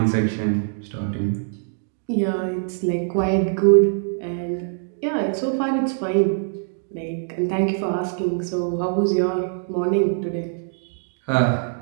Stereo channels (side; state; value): left; silent; digital silence